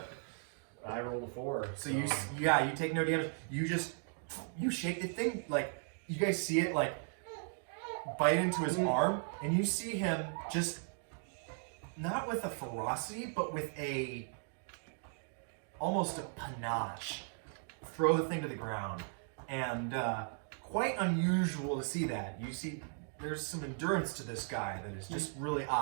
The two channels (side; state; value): left; silent; 53 dB below the other